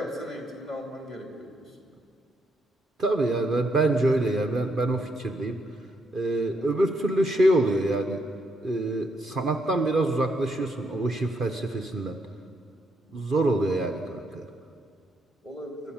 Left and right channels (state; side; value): normal; both; correlation 0.76